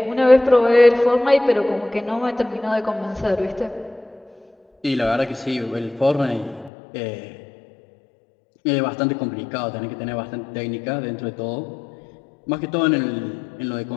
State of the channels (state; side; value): drops out; right; at 6.7 s